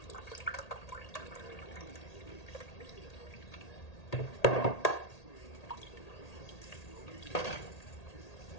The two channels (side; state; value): right; late; 1.8 ms